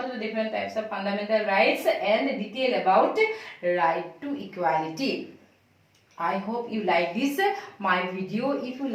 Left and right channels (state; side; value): identical; both; correlation 1.00